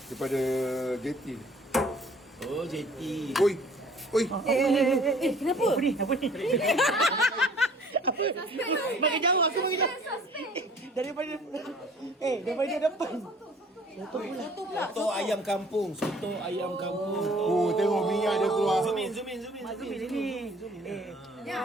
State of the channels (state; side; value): normal; both; correlation 0.53